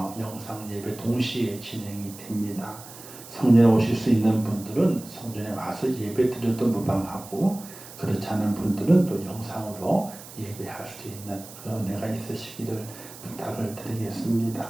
영상 예배 동시에 진행이 됩니다. 성전에 오실 수 있는 분들은 성전에 와서 예배 드려도 무방하고, 그렇지 않은 분들은 또 영상으로 예배할 수 있는 그런 은혜가 있으시기를 부탁을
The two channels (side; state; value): right; noise; hiss, 16 dB below the sound